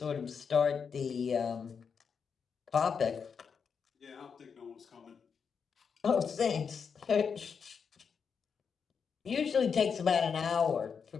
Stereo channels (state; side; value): quieter; right; 6.3 dB